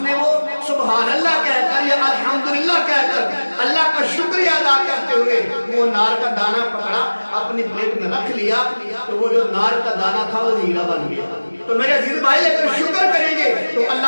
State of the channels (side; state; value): both; inverted; correlation -1.00